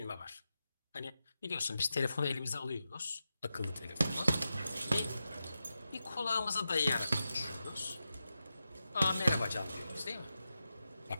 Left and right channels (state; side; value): inverted; both; correlation -0.90